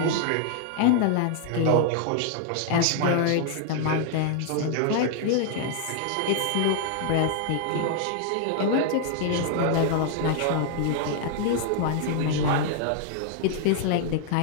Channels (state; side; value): different; both; correlation 0.00